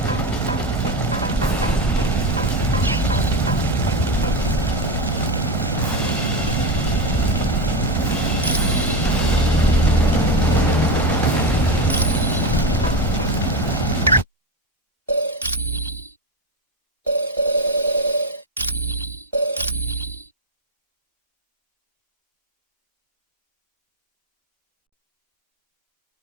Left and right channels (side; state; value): both; normal; correlation 0.15